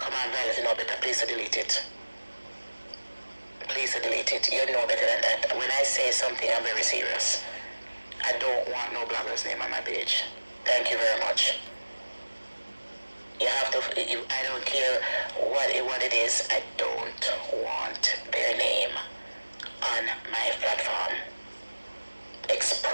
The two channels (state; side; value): inverted; both; correlation -1.00